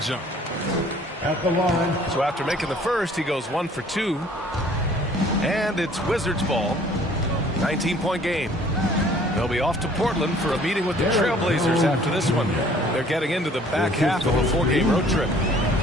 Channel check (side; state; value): both; normal; correlation 0.55